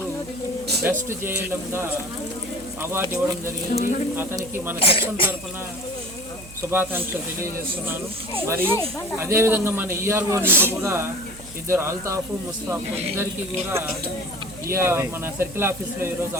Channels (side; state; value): right; noise; hum, 18 dB below the sound